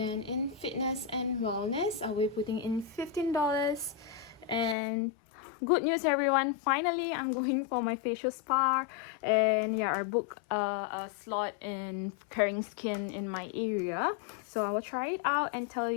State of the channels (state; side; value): drops out; right; at 4.8 s